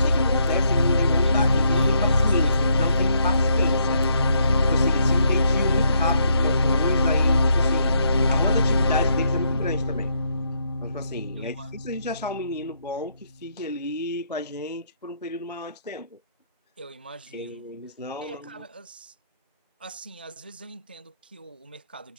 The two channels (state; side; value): inverted; both; correlation -0.75